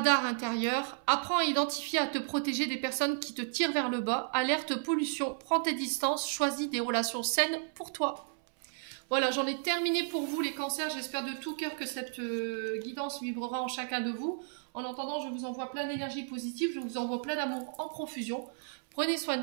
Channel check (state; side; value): silent; left; 56 dB below the other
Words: intérieur. Apprends à identifier, à te protéger des personnes qui te tirent vers le bas. Alerte pollution, prends tes distances, choisis des relations saines pour toi. Voilà, j'en ai terminé pour vous les cancers. J'espère de tout cœur que cette guidance vibrera en chacun de vous. En attendant, je vous envoie plein d'énergie positive. Je vous envoie plein d'amour en profusion. Prenez soin